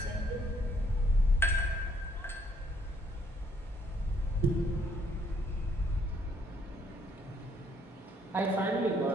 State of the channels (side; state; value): both; normal; correlation 0.68